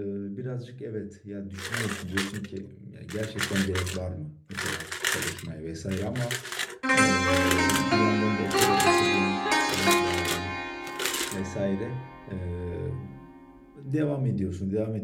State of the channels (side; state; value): both; identical; correlation 1.00